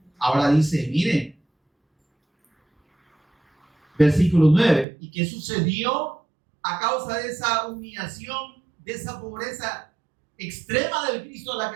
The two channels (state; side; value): drops out; left; at 4.9 s